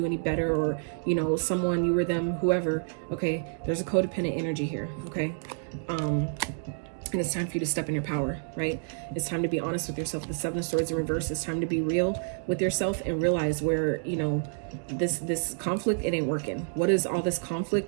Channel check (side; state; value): left; silent; digital silence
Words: any better, or, you know, someone, you or them, whoever, okay? There's a codependent energy here, okay? And it's time for you to step in your power, right? It's time to be honest with yourself. The Seven of Swords in reverse. It's time to be real with yourself and realize where, you know, this conflict, it ain't working. What is all this